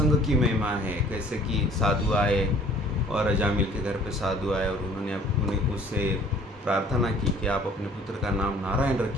की महिमा है, कैसे कि साधु आए और अजामिल के घर पे साधु आए और उन्होंने उससे प्रार्थना की कि आप अपने पुत्र का नाम नारायण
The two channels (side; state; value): both; normal; correlation 0.53